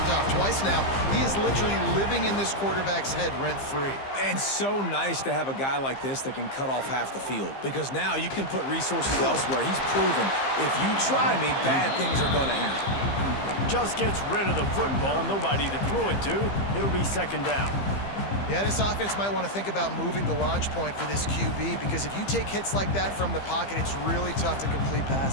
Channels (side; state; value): right; late; 15 ms